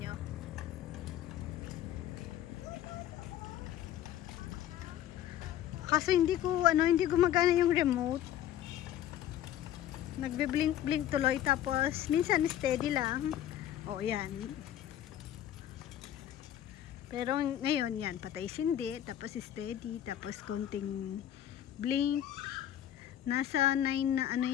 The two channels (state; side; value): quieter; right; 11.5 dB